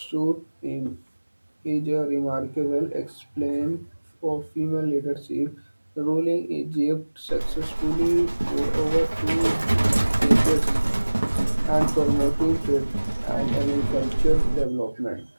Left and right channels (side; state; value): both; inverted; correlation -1.00